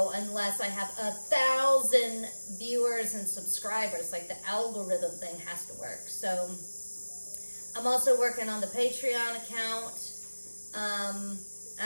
unless I have 1,000 viewers and subscribers. Like the algorithm thing has to work. So I'm also working on the Patreon account.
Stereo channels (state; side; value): inverted; both; correlation -1.00